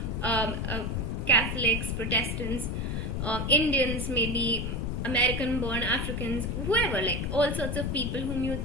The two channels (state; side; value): noise; left; rumble, 2 dB below the sound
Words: Catholics, Protestants, Indians, maybe American-born Africans, whoever, like all sorts of people whom you